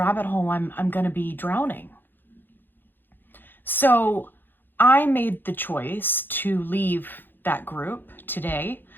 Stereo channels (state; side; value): late; right; 0.095 ms